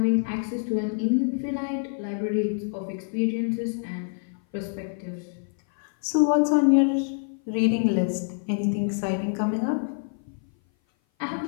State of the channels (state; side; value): silent; right; 57 dB below the other